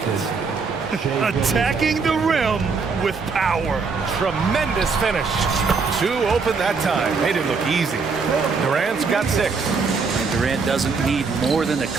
Attacking the rim with power. Tremendous finish. Two open that time. Made it look easy. Durant's got 6. And Durant doesn't need more than a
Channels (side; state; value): left; quieter; 4.8 dB